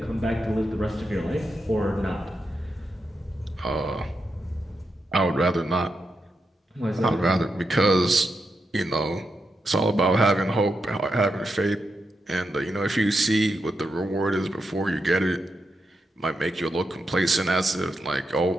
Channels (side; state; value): both; normal; correlation 0.86